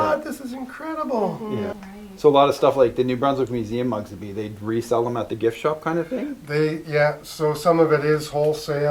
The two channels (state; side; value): identical; both; correlation 1.00